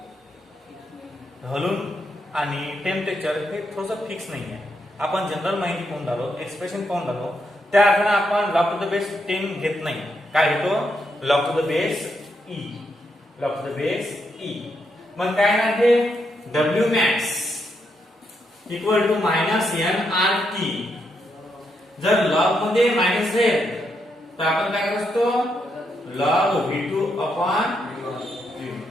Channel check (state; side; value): normal; both; correlation 0.80